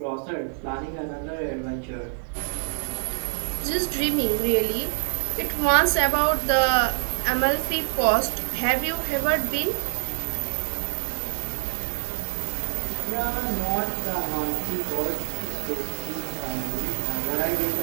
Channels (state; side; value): silent; left; 61 dB below the other